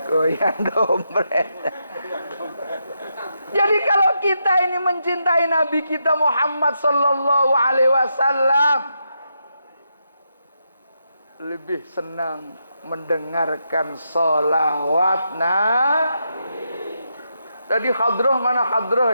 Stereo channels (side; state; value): both; inverted; correlation -0.83